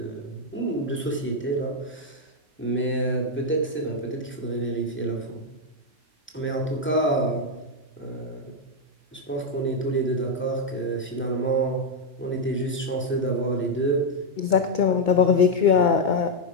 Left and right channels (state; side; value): normal; both; correlation 0.01